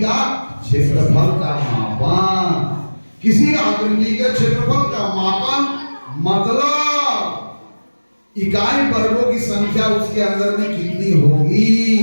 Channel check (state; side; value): inverted; both; correlation -1.00